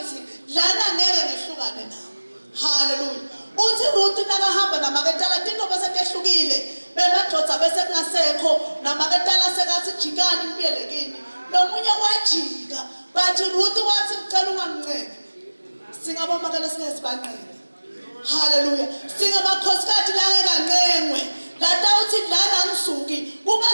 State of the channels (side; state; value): both; inverted; correlation -1.00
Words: lana ngeke ngehlukane nawe. Haleluya. Uthi Ruth nakahamba namaketala tinto bese tehlukile. Bemadodza bese kungasekho namaketala sekathi jikani kubiyelekini. Nomunye wajika bathi Ruth wathi ngicela unganginceke. Singabomakela sinesibanqele. Haleluya. Singabakhosikazi la ngeke lata uthi lana ngisuki